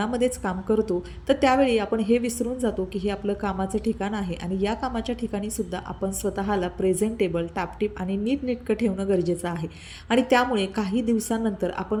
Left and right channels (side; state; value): both; identical; correlation 1.00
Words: काम करतो तर त्यावेळी आपण हे विसरून जातो की हे आपलं कामाचं ठिकाण आहे आणि या कामाच्या ठिकाणीसुद्धा आपण स्वतःला प्रेझेंटेबल, टापटीप आणि नीटनेटकं ठेवणं गरजेचं आहे. आणि त्यामुळे काही दिवसांनंतर